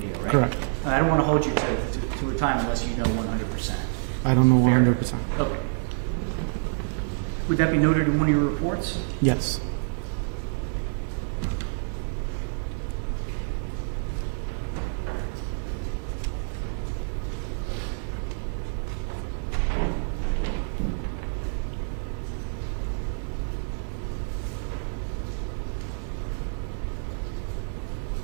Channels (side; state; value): left; silent; digital silence